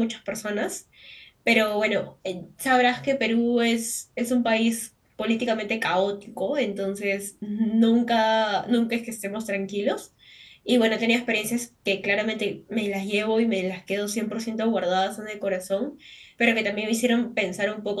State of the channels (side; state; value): both; identical; correlation 1.00